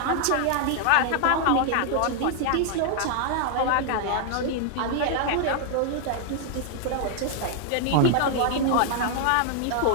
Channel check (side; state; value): both; different; correlation 0.00